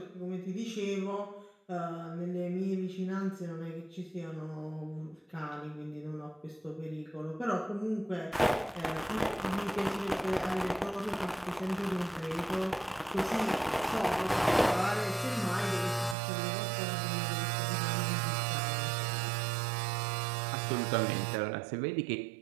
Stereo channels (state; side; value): drops out; left; at 16.2 s